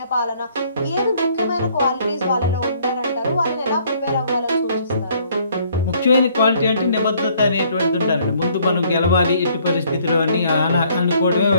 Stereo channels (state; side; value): inverted; both; correlation -0.62